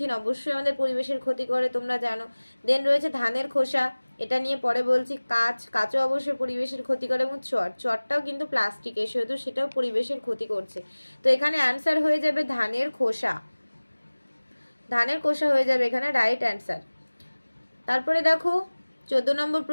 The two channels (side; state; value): both; inverted; correlation -1.00